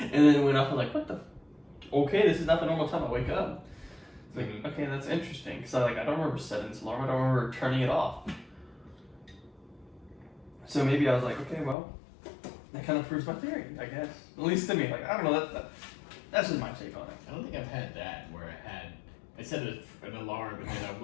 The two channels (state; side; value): drops out; right; at 11.8 s